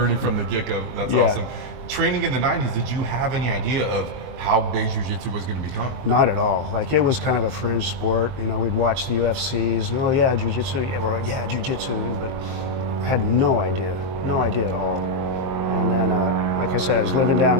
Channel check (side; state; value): left; late; 23 ms